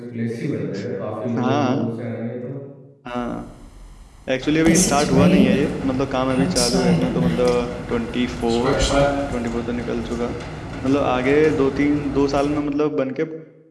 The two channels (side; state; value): both; identical; correlation 1.00